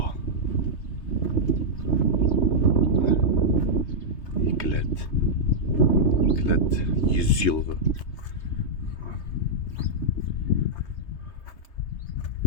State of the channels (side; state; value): right; late; 3.2 ms